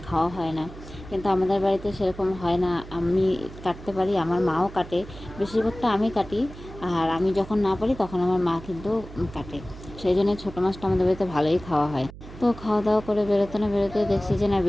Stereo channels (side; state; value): right; noise; hum, 15 dB below the sound